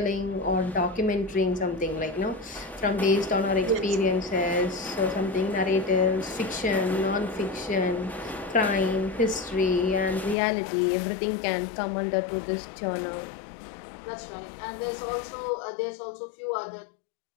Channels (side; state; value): right; drops out; at 10.4 s